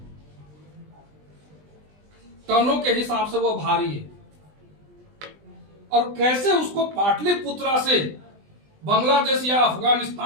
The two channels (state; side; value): late; left; 20 ms